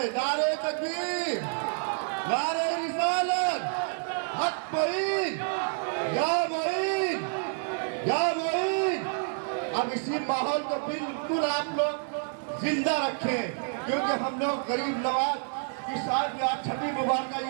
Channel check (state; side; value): silent; left; 59 dB below the other